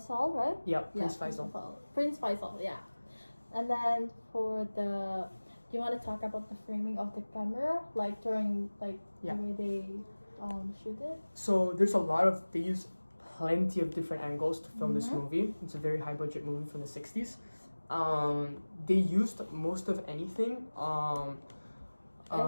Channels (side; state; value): both; inverted; correlation -1.00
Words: right? Yeah, Prince Faisal. Prince Faisal, yeah. And then do you want to talk about the framing of the camera, like during the way they shoot it? So there's they use plenty of different angles to film this movie. It's a very high budget movie from the 60s. They used most of anything.